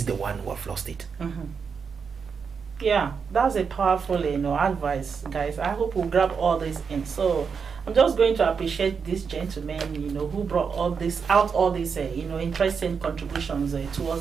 the one who have lost it. Yeah, that's a powerful advice, guys. I hope we'll grab all this in. So I'm just going to appreciate these gentlemen, who brought all these interesting contributions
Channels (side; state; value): left; quieter; 6.0 dB